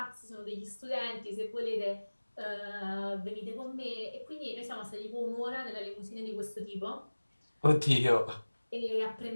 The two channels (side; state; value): both; inverted; correlation -1.00